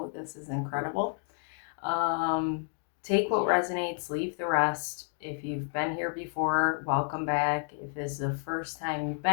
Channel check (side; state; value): right; silent; 57 dB below the other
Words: This is incredible. Take what resonates, leave the rest. If you've been here before, welcome back. If this is the first time you've